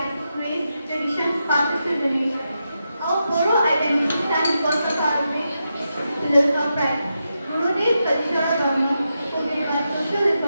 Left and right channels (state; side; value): inverted; both; correlation -0.87